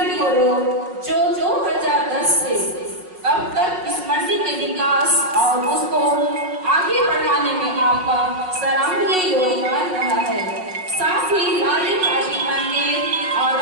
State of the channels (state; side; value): late; left; 5.4 ms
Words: गोरो, जो 2010 से अब तक इस मंडली के विकास और उसको आगे बढ़ाने में आपका सराहनीय योगदान रहा है। साथ ही लाली पार्टी मंदिर और